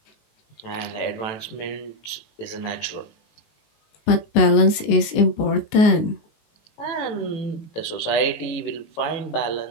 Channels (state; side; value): late; right; 19 ms